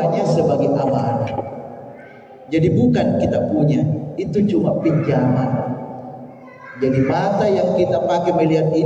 sebagai amanah. Jadi bukan kita punya, itu cuma pinjaman. Jadi mata yang kita pakai melihat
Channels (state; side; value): identical; both; correlation 1.00